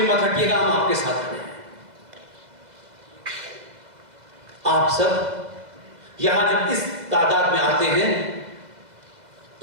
मत हटिएगा, हम आपके साथ खड़े हैं। आप सब यहां जब इस तादाद में आते हैं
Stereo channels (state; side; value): late; left; 2.0 ms